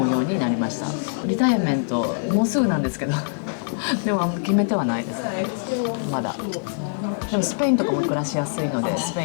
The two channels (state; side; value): silent; right; digital silence